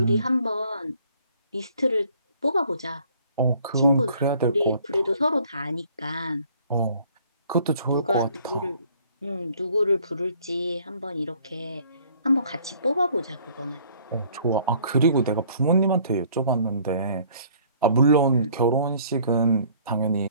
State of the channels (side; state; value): both; inverted; correlation -0.58